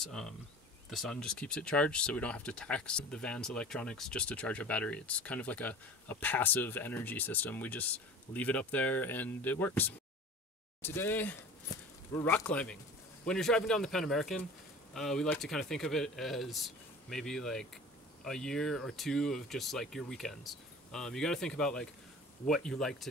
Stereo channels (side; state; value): both; normal; correlation 0.40